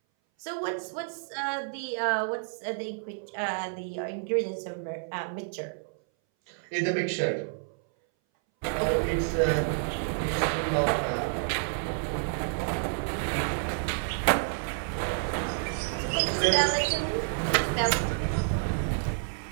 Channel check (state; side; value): silent; left; 58 dB below the other